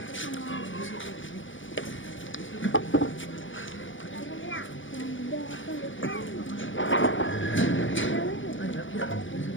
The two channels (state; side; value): late; right; 0.56 ms